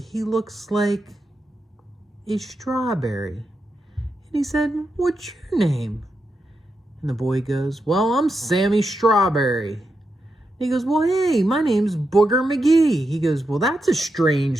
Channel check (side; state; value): both; normal; correlation 0.86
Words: looks like a strawberry. And he said, "What's your name?" And the boy goes, "Well, I'm Sammy Strawberry." And he goes, "Well, hey, my name's Booger Magee." He goes, "Well, that's a